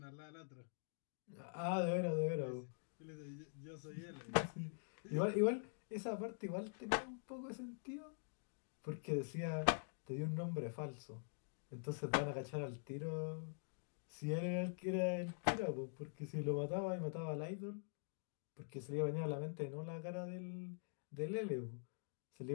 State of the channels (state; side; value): silent; right; digital silence